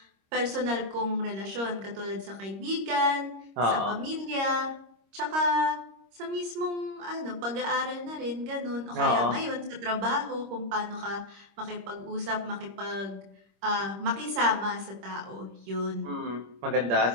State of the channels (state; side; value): late; left; 26 ms